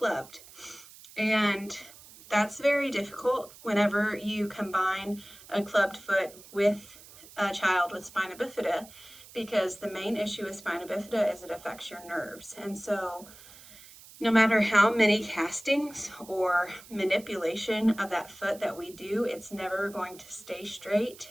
And that's very difficult whenever you combine a clubbed foot with a child with spina bifida, because the main issue with spina bifida is it affects your nerves. And so no matter how many castings or manipulation of that foot that we do, it's never going to stay straight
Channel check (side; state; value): right; noise; hiss, 20 dB below the sound